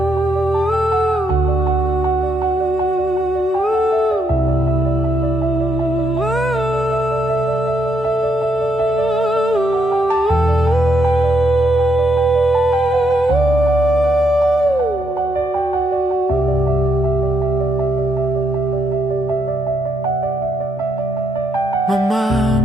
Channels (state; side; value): normal; both; correlation 0.76